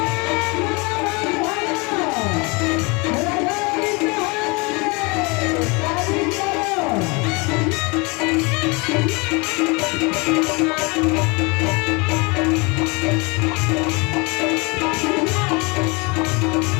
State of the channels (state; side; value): quieter; right; 28.3 dB